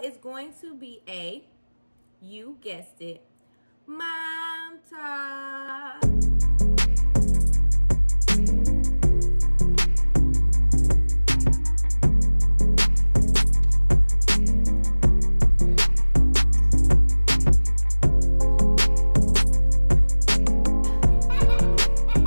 going to be you guessed it, mom talk.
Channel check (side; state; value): both; inverted; correlation -1.00